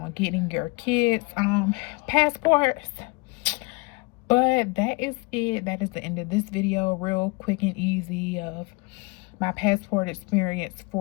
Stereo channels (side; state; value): right; quieter; 25.7 dB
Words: getting your kids passports. But that is it. That is the end of this video. Real quick and easy of my passport experience